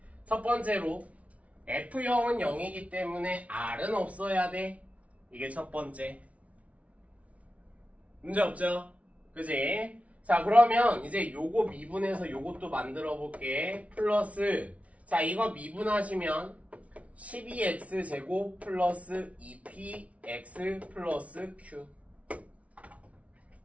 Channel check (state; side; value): late; left; 0.066 ms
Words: 첫 번째로 F0은 0이기 때문에 R은 없어야 돼. 이게 첫 번째. 문제 없죠? 그지? 자, 그러면 이제 요거 미분해서 요것도 만들어 볼게. 플러스 자, 이거 미분하시면 12x 제곱 플러스 2px 플러스 q.